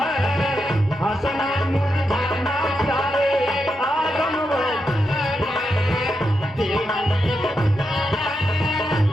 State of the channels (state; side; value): normal; both; correlation 0.85